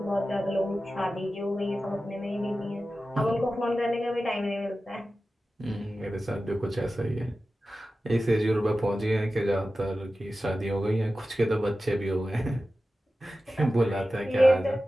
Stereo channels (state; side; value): normal; both; correlation 0.94